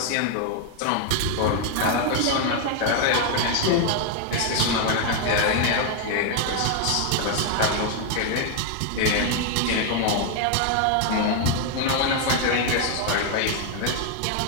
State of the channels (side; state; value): both; different; correlation 0.00